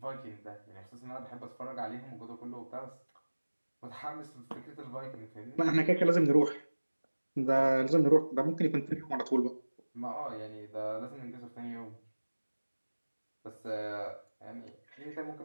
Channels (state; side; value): inverted; both; correlation -1.00